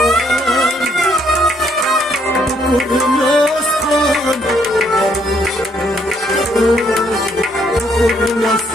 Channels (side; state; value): both; normal; correlation 0.69